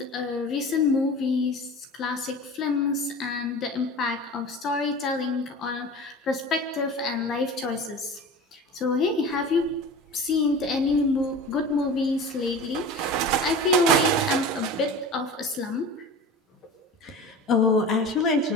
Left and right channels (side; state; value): both; normal; correlation 0.35